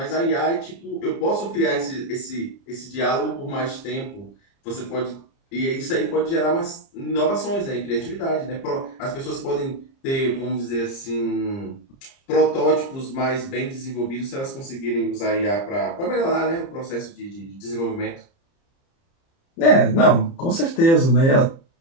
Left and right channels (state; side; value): late; right; 30 ms